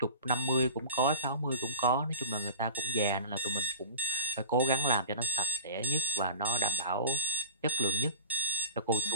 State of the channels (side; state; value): both; inverted; correlation -0.41